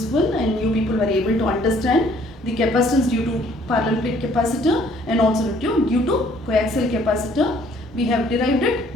and you people were able to understand the capacitance due to parallel plate capacitor and also due to coaxial capacitor. We have derived it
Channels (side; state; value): both; normal; correlation 0.60